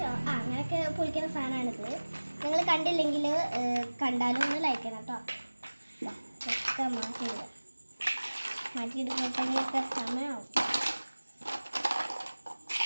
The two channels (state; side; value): inverted; both; correlation -1.00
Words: അങ്ങനെയൊക്കെ പൊളിക്കുന്ന സാധനമാണിത്. നിങ്ങൾ കണ്ടില്ലെങ്കിൽ കണ്ടാലും ഒന്ന് ലൈക്ക് ചെയ്യണം കേട്ടോ. ഒക്കെ മാറ്റിയെടുക്കുമ്പോഴത്തേക്കൊക്കെ സമയമാവും.